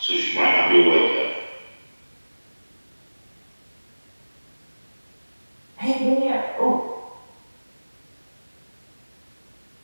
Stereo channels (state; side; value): inverted; both; correlation -1.00